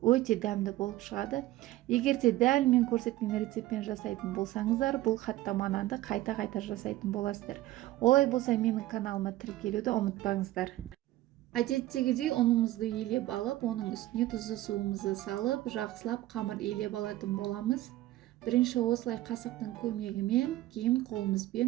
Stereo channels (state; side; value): quieter; left; 16.0 dB